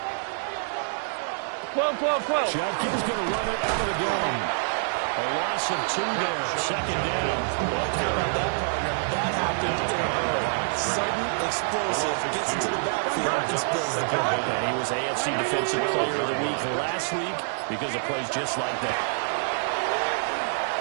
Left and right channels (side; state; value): left; silent; digital silence